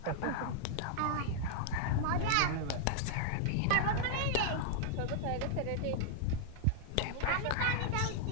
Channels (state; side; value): different; both; correlation -0.01